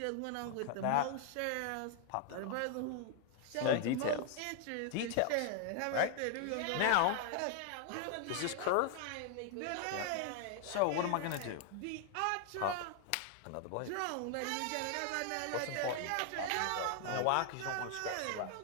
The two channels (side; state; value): both; different; correlation 0.00